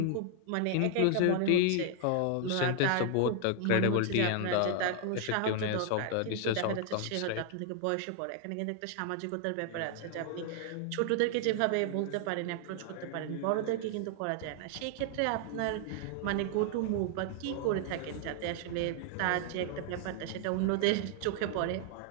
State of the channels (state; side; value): different; both; correlation 0.00